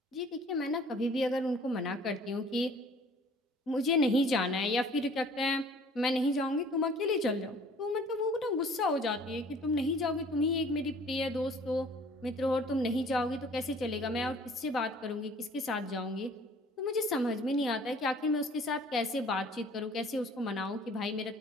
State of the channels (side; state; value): both; normal; correlation 0.53